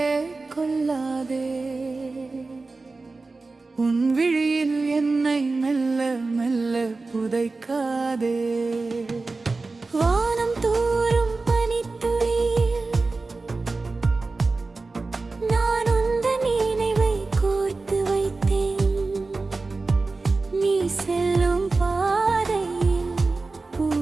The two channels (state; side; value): quieter; left; 3.7 dB